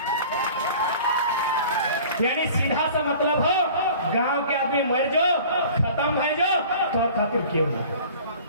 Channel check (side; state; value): both; inverted; correlation -0.45